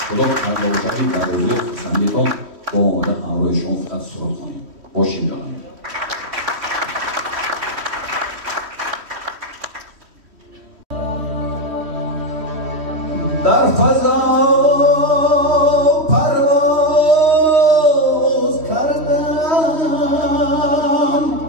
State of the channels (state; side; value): late; left; 3.1 ms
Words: خدا کرده باشدی در روزی خسندیتان با آمده همراه شما فقط سرود کنیم باشیم جانایی در فضا پرواز کردم